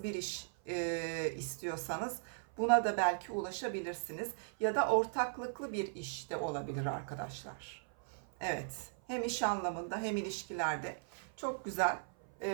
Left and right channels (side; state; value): left; silent; 53 dB below the other